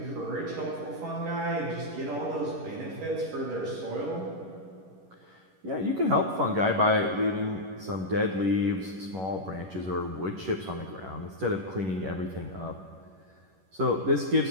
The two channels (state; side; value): late; left; 11 ms